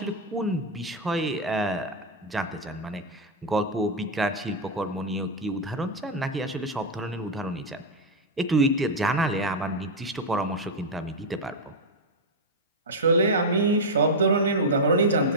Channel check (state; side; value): normal; both; correlation -0.01